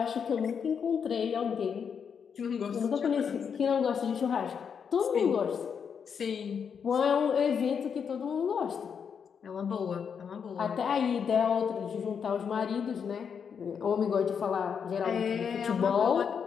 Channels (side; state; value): right; quieter; 6.9 dB